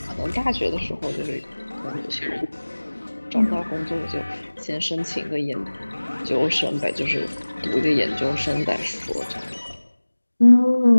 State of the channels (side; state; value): both; inverted; correlation -1.00